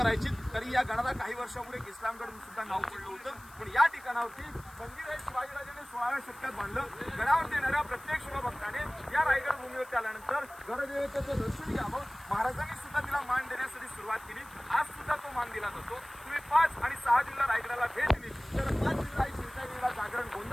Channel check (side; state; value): left; noise; hiss, 23 dB below the sound